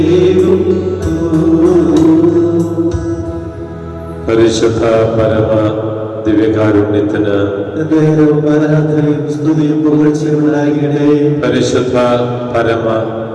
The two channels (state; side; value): identical; both; correlation 1.00